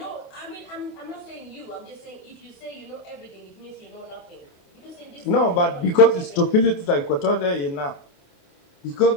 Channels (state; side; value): late; right; 28 ms